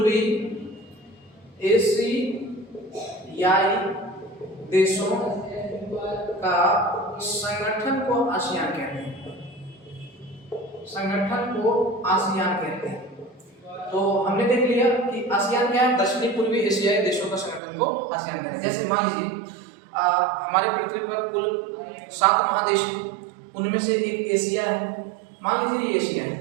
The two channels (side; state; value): left; drops out; at 17.6 s